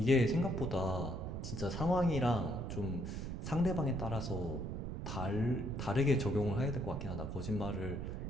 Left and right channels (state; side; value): noise; right; rumble, 5 dB below the sound